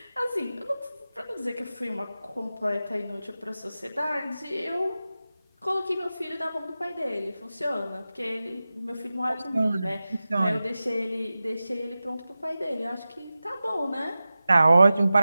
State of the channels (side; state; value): both; inverted; correlation -0.95